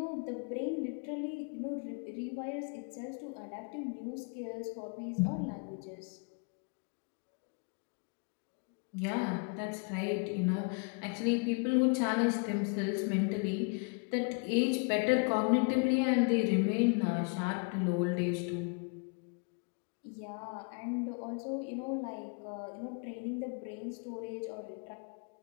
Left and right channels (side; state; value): right; quieter; 35.4 dB